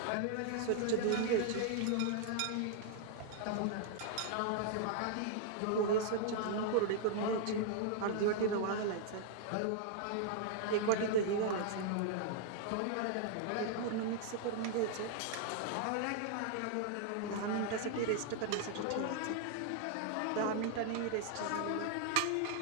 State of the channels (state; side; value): different; both; correlation -0.01